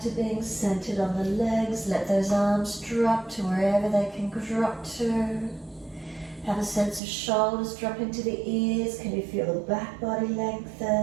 to being centered on the legs. Let those arms drop to wherever they can drop to. Have a sense of shoulders drop into the ears. Can you feel the back body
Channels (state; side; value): drops out; left; at 7.0 s